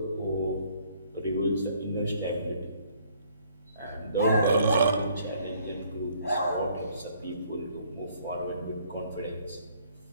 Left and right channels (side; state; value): both; inverted; correlation -0.62